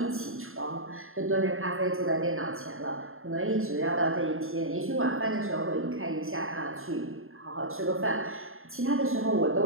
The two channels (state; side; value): late; left; 0.61 ms